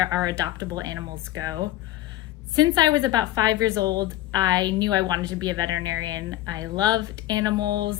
our adoptable animals go. Since I was about 5 years old, I knew I wanted to be a veterinarian. I loved animals.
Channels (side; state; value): right; quieter; 15.0 dB